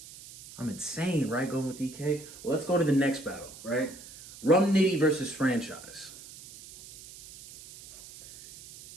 I'm insane, right? Going with EK. Well, let's go to the next battle, right? Rum Nitty versus Franchise.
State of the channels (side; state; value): right; noise; hiss, 17 dB below the sound